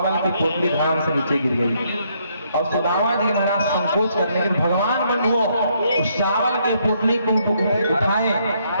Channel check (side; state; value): both; inverted; correlation -0.72